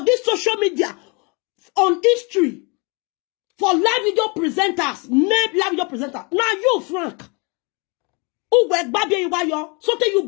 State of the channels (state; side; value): quieter; right; 31.4 dB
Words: this social media on history for live video presenters, made live video presenter. Now you, Frank. Who work Abiyayiwa yo? So tell